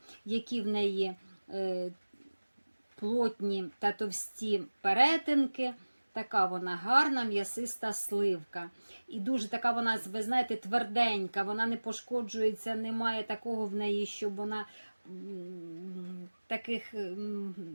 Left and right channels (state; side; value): inverted; both; correlation -1.00